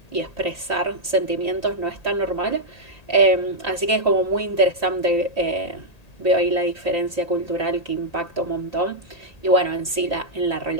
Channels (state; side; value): late; right; 1.8 ms